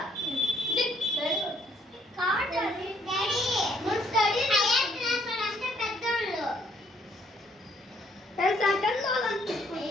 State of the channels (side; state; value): both; normal; correlation 0.67